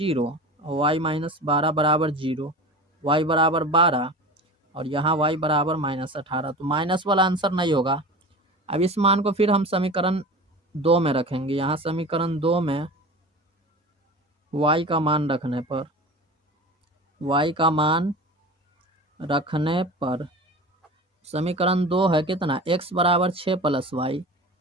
और y माइनस 12 बराबर 0, y बराबर 12 और यहाँ y बराबर माइनस 18, तो माइनस वाला आंसर नहीं होगा। अब इस मान को फिर हम समीकरण 2 में रखेंगे, यहाँ समीकरण 2 में y का मान रखने पर, y का मान रखने पर समीकरण 2 है कितना, x बराबर 6 प्लस वाई,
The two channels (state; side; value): normal; both; correlation 0.34